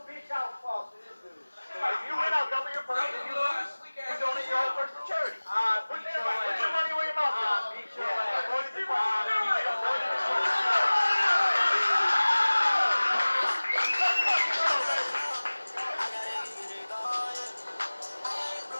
bitch out, false to this dude. If you win, I'll double your purse. If you lose, you donate your whole purse to charity. Put your money where your mouth is. Beat your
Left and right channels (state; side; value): inverted; both; correlation -1.00